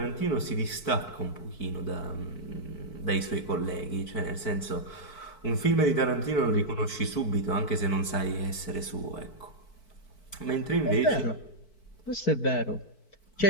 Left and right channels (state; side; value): late; right; 4.6 ms